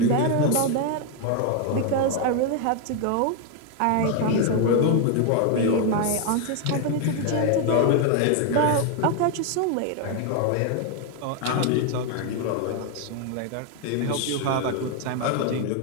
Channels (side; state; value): both; different; correlation 0.01